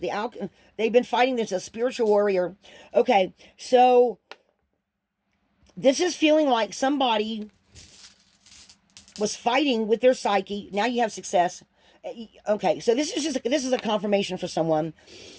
They've been fighting this, a spiritual warrior. Okay, so this is feeling like somebody was fighting with their psyche. Now you have success. Okay, so this is a confirmation for someone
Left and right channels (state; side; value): identical; both; correlation 1.00